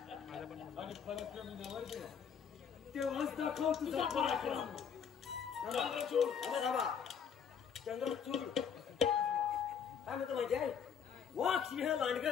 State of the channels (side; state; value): right; quieter; 7.3 dB